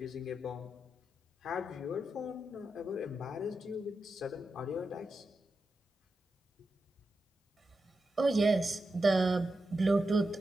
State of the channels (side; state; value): both; normal; correlation 0.89